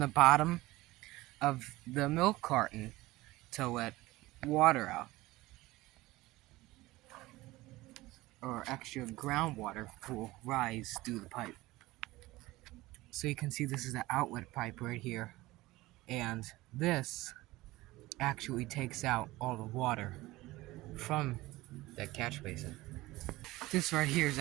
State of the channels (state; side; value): quieter; left; 19.0 dB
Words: bottom of the milk carton to let water out. Or extra groundwater will rise through the pipe. So you can see this is the outlet pipe right here. And this actually takes out all the water from that catch basin. This right here is